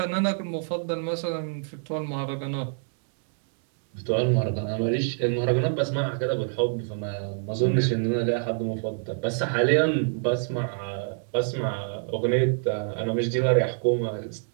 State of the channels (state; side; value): silent; left; 61 dB below the other